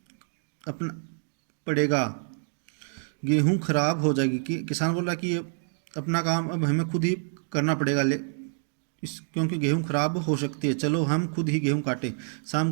अपना पड़ेगा, गेहूं खराब हो जाएगी। किसान बोल रहा कि अपना काम अब हमें खुद ही करना पड़ेगा, क्योंकि गेहूं खराब हो सकती है, चलो हम खुद ही गेहूं काटें। शाम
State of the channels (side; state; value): left; silent; 60 dB below the other